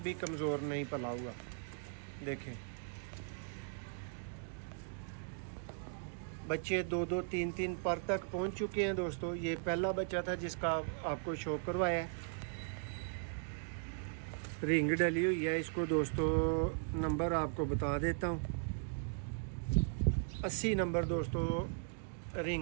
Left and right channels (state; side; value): silent; left; digital silence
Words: भी कमज़ोर नहीं पला हुआ। देखें बच्चे 2-2, 3-3 पर तक पहुँच चुके हैं दोस्तों। ये पहला बच्चा था जिसका आपको शौक करवाया है। रिंग डली हुई है इसको दोस्तों। नंबर आपको बता देता हूँ, 80 नंबर दोस्तों